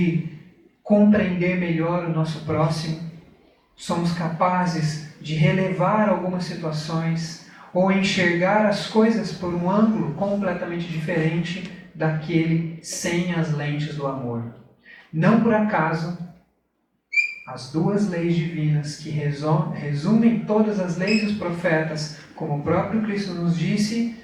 compreender melhor o nosso próximo. Somos capazes de relevar algumas situações ou enxergar as coisas por um ângulo completamente diferente daquele sem as lentes do amor. Não por acaso, as duas leis divinas que resumem todas as leis dos profetas, como o próprio Cristo nos disse,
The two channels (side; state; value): both; identical; correlation 1.00